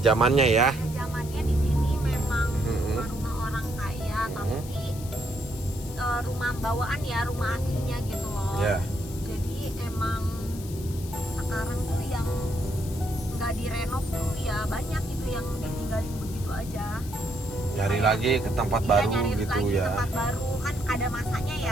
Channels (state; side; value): noise; left; hiss, 16 dB below the sound